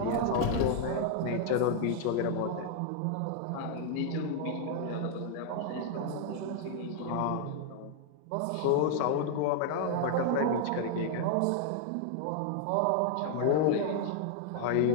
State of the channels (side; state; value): both; different; correlation -0.01